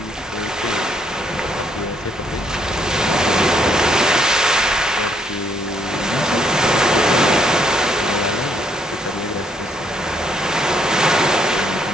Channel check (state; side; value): normal; both; correlation 0.70